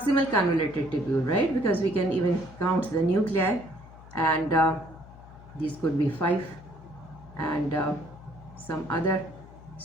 convoluted tubule, right? Because we can even count the nuclei, and these could be 5, and some other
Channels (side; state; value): left; noise; hum, 19 dB below the sound